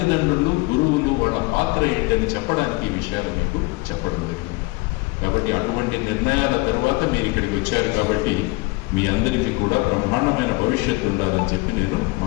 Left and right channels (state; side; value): quieter; right; 24.4 dB